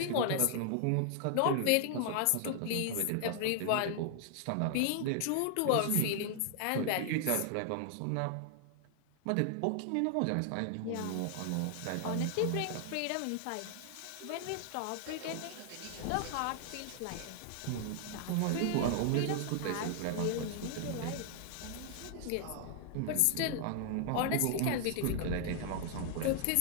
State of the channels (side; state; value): both; different; correlation 0.00